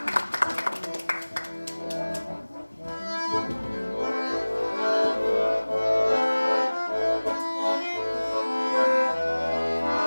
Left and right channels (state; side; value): inverted; both; correlation -1.00